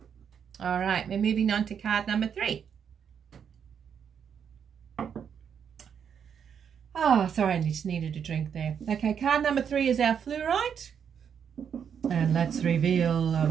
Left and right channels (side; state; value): left; quieter; 7.7 dB